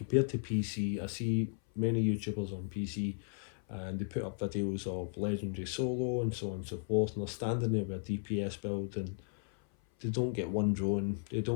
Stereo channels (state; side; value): silent; right; 54 dB below the other